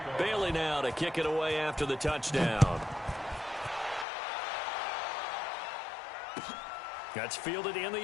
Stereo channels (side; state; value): right; drops out; at 4.0 s